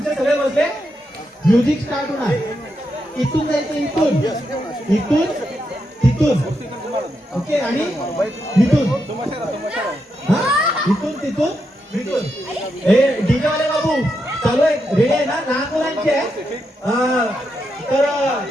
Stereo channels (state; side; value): normal; both; correlation 0.84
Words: सगळे बसले. म्युझिक स्टार्ट होणार. इथून जायचं, इथून तिथून, ओके. आणि इथून, इथून तिथून इथून. हे डीजे वाले बाबू चालू आहे, रेडी आहे ना? लहान मुलांची आहे. तर